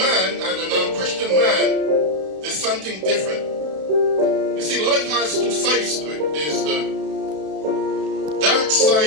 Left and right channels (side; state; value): left; late; 32 ms